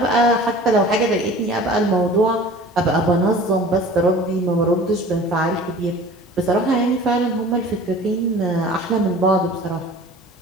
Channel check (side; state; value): both; normal; correlation 0.43